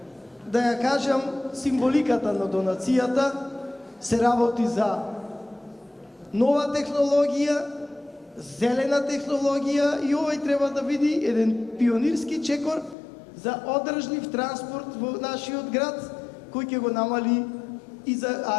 да ја кажам символиката на донацијата. Се работи за нова технологија, зелена технологија и овој треба да биде еден пионирски чекор за одржлив транспорт во нашиот град, кој ќе го намали и за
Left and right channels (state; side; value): drops out; right; at 13.0 s